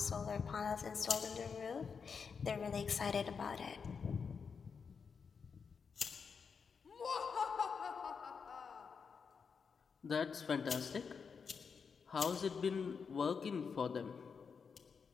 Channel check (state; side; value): quieter; right; 5.8 dB